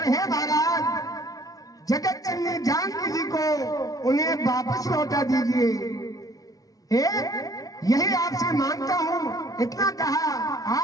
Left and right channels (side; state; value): right; late; 0.18 ms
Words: हे महाराज, जगत जननी जानकी जी को उन्हें वापस लौटा दीजिए। यही आपसे मांगता हूं, इतना कहा